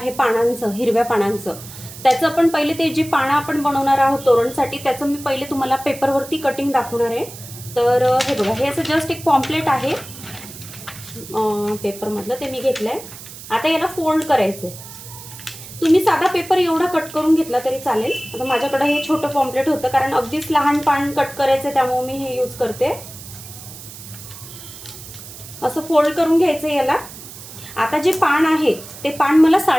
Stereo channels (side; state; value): right; noise; hiss, 15 dB below the sound